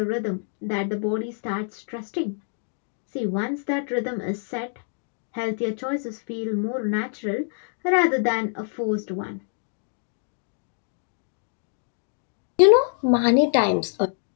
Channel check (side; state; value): right; silent; 61 dB below the other